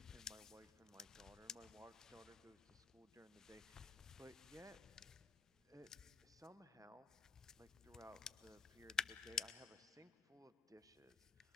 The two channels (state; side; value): quieter; right; 5.7 dB